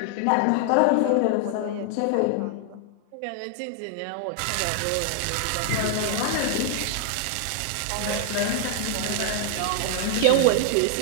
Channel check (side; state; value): both; different; correlation 0.00